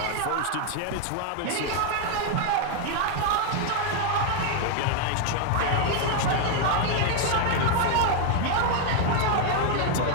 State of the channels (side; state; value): both; different; correlation 0.00